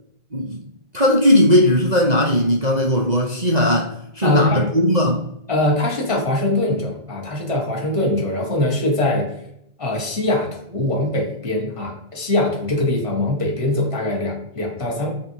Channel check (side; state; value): left; late; 1.5 ms